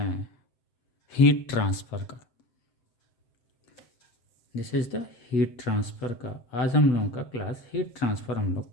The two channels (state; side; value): late; right; 7.8 ms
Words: हैं हीट ट्रांसफ़र का। This is the heat transfer का आज हम लोगों का क्लास हीट ट्रांसफ़र हम लोग